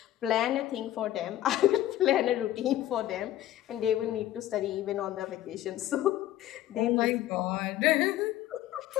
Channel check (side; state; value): right; quieter; 13.5 dB